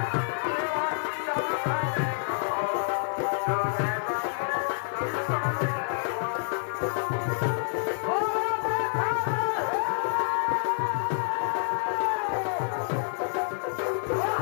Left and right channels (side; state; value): right; silent; digital silence